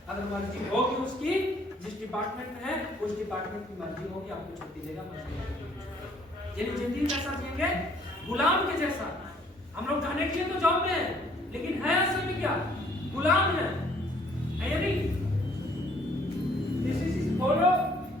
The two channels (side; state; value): both; normal; correlation 0.62